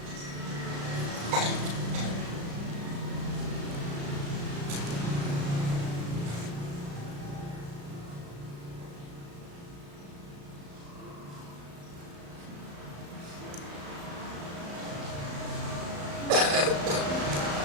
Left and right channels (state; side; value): late; left; 35 ms